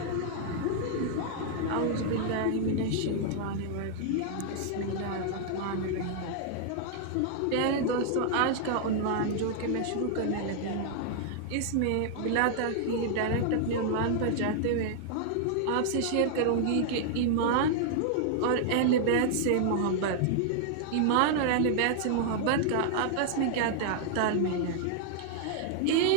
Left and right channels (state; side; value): different; both; correlation 0.00